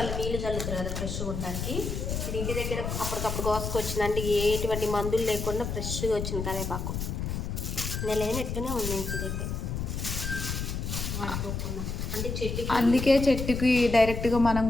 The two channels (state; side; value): noise; left; rumble, 3 dB below the sound